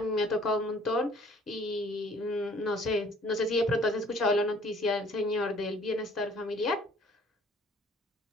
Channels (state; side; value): normal; both; correlation 0.56